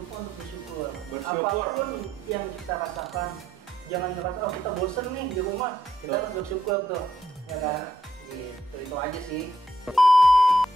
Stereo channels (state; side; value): normal; both; correlation 0.75